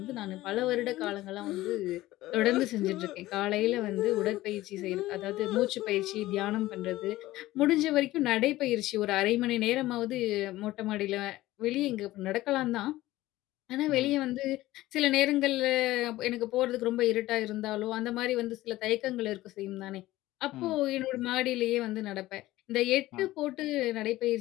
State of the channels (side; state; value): right; quieter; 16.7 dB